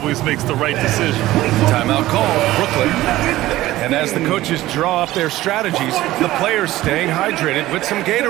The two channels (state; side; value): quieter; left; 16.2 dB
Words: makes the right decision. Timeout call, Brooklyn. And as the coaches draw up their strategies, the players staying hydrated with some